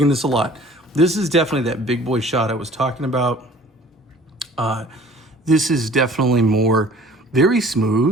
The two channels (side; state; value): both; normal; correlation 0.50